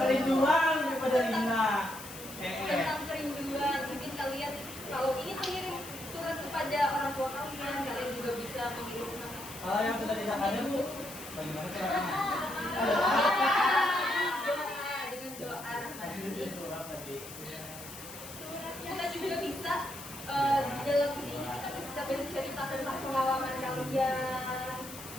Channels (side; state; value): left; noise; hiss, 13 dB below the sound